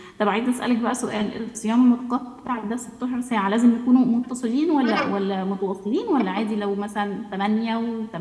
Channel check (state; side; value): identical; both; correlation 1.00